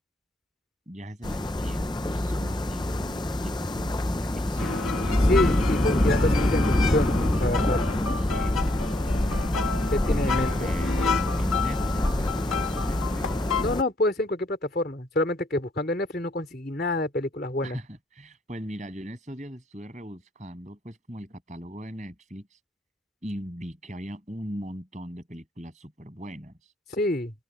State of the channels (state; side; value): normal; both; correlation 0.72